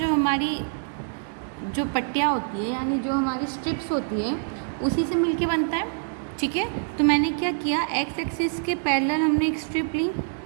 हमारी जो पट्टियाँ होती है, यानी जो हमारी स्ट्रिप्स होती है, उसी से मिलके बनता है, ठीक है। तो मैंने क्या किया, एक्स एक्सिस के पैरेलल हमने एक स्ट्रिप ली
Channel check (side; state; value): left; silent; digital silence